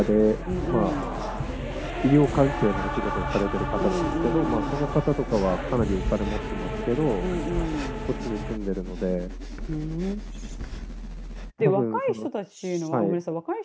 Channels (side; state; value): both; identical; correlation 1.00